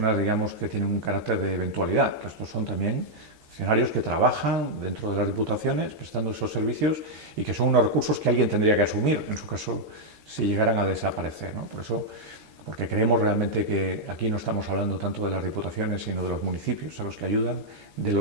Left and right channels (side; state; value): left; late; 13 ms